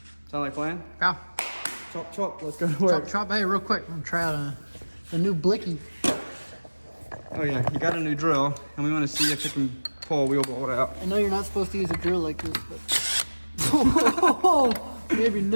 Sound like a plan? Go. Chop, chop, let's go to work. Chop, chop. Hey, real quick, I'm gonna try out a new blicky. Oh yeah, you got a new drill, and we want to see if it can pull a wheel bolt out. I know you're not supposed to use a drill like this, but... Oh, maybe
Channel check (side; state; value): both; inverted; correlation -1.00